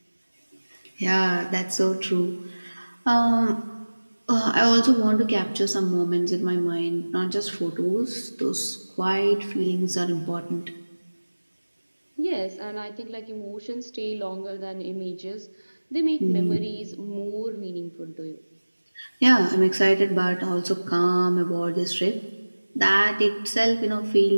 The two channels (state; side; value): inverted; both; correlation -1.00